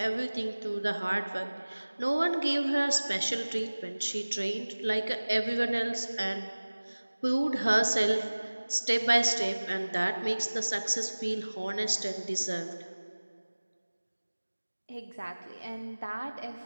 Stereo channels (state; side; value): inverted; both; correlation -1.00